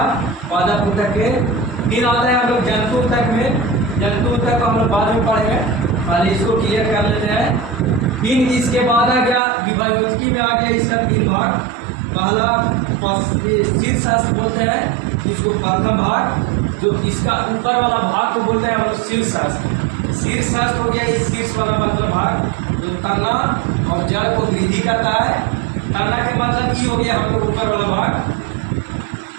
पादप उत्तक के। फिर आते हैं हम लोग जंतु उत्तक में। जंतु उत्तक को हम लोग बाद में पढ़ेंगे, पहले इसको क्लियर कर लेते हैं। फिर इसके बाद आ गया विभाजकी में, आ गया इसका तीन भाग। पहला शीर्षास्त्र बोलते हैं, जिसको प्रथम भाग, जो इसका ऊपर वाला भाग को बोलते हैं हम लोग शीर्षास्त्र। शीर्षास्त्र हो गया इस शीर्ष वाला मतलब भाग जो तना और जड़ को वृद्धि करता है। तना के मतलब ये हो गया हम लोग ऊपर वाला भाग,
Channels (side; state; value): left; drops out; at 9.4 s